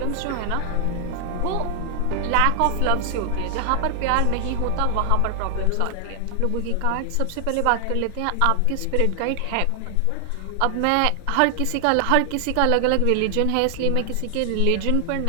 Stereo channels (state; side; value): different; both; correlation 0.00